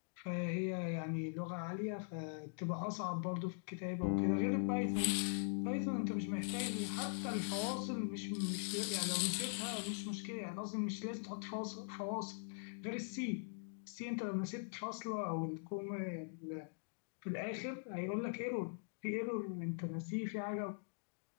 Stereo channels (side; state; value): right; silent; digital silence